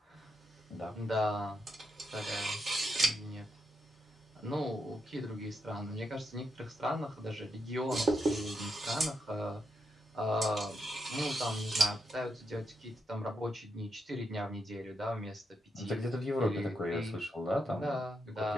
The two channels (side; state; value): both; normal; correlation 0.82